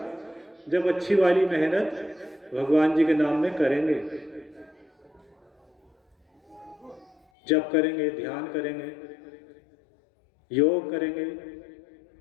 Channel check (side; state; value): right; drops out; at 7.2 s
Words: जब अच्छी वाली मेहनत भगवान जी के नाम में करेंगे, जप करेंगे, ध्यान करेंगे, योग करेंगे,